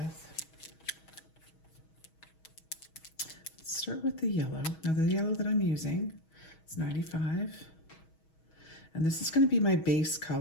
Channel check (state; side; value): late; right; 6.3 ms